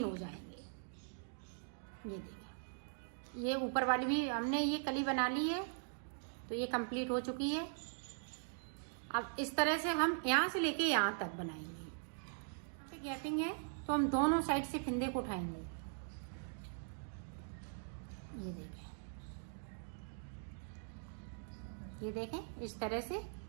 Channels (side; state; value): left; silent; digital silence